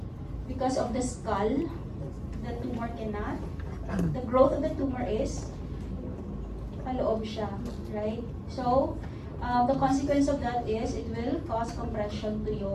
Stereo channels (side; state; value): both; identical; correlation 1.00